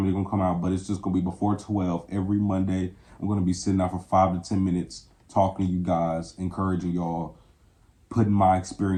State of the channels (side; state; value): both; identical; correlation 1.00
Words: they're going to come out, but it's just going to be before 12 every Monday. I'm going to be sitting out for 5 to 10 minutes, talking to you guys, encouraging y'all, putting my